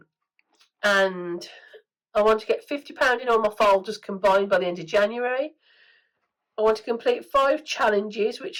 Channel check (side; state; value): both; identical; correlation 1.00